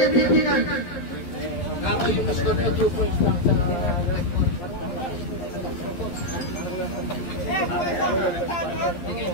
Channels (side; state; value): right; late; 11 ms